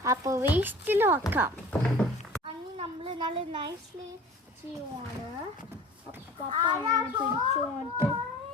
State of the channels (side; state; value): both; normal; correlation 0.44